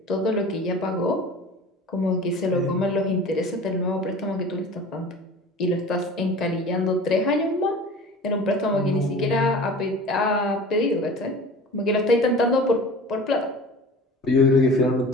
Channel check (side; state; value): both; normal; correlation 0.40